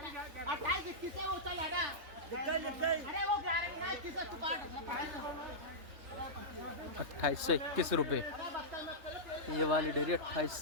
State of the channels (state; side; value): late; left; 3.5 ms